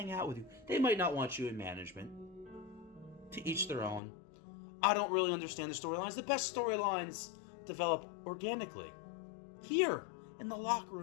out with you. They might not want you in management. To each their own. I don't really understand the storylines. The best storylines develop organically. Here, in the locker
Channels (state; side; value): drops out; right; at 4.0 s